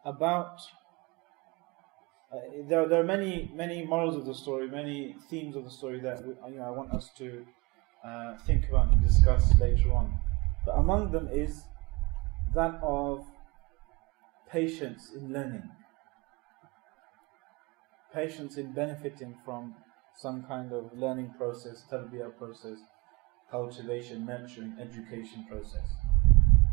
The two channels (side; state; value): left; quieter; 24.1 dB